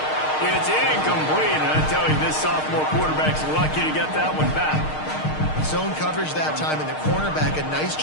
It's incomplete, and I tell you, this sophomore quarterback's lucky to get that one back. Zone coverage that time, and the cornerback, a nice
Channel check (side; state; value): right; late; 6.5 ms